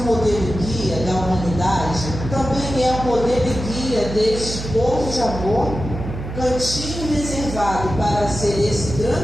modelo e guia da humanidade, também é o modelo e guia deste povo de amor, cantinho reservado para ser esse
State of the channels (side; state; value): right; noise; hum, 8 dB below the sound